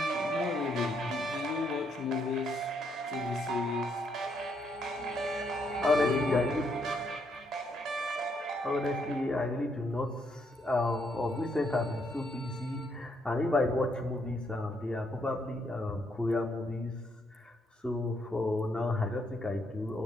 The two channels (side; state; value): both; normal; correlation 0.74